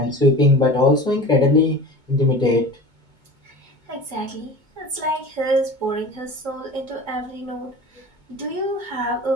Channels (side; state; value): left; late; 2.2 ms